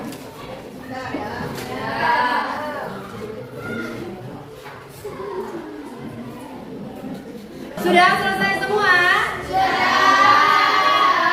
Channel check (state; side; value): identical; both; correlation 1.00